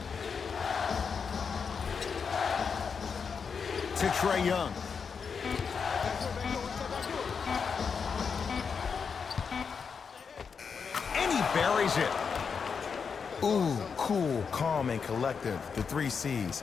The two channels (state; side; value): quieter; right; 6.0 dB